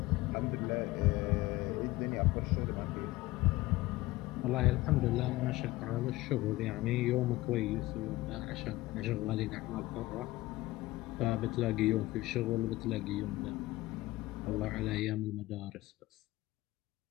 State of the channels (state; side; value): quieter; right; 18.7 dB